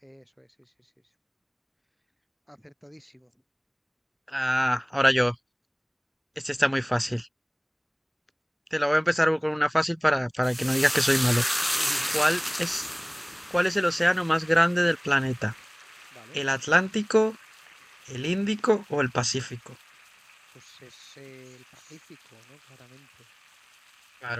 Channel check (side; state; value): both; identical; correlation 1.00